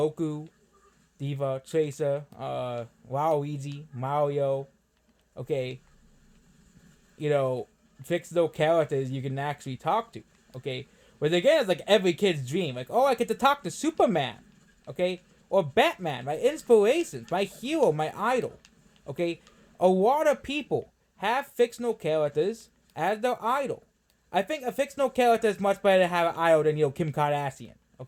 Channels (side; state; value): both; identical; correlation 1.00